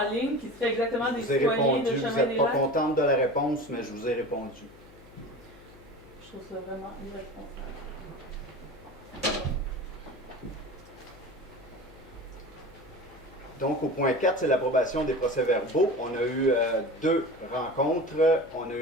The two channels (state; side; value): noise; left; hum, 23 dB below the sound